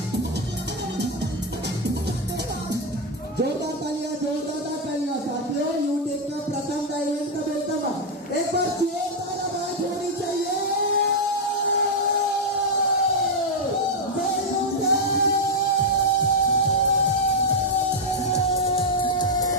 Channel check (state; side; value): normal; both; correlation 0.01